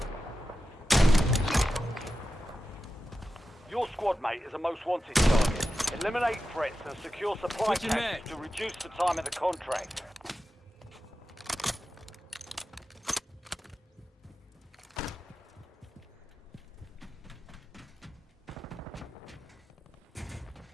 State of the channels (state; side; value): normal; both; correlation 0.92